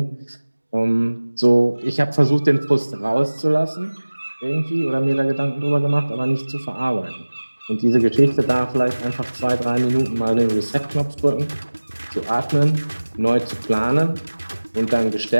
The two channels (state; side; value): inverted; both; correlation -1.00